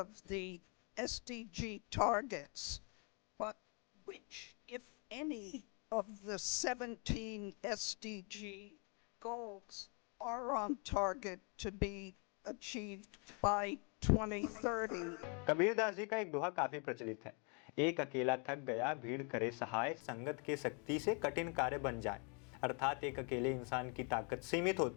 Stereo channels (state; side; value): quieter; right; 36.4 dB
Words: the SDG targets, but which, if any, of the 17 SDG goals are on target to be achieved by 2030? Kabirdas ji का एक दोहा काफी प्रचलित है। एक अकेला थक गया, भीड़ करे सहाय, संगत के शक्ति से कठिन कार्य बन जाए। अर्थात एक अकेले इंसान की ताकत सीमित